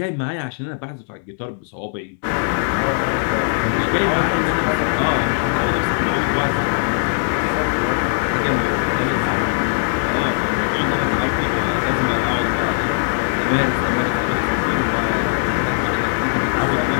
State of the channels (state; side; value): silent; right; 61 dB below the other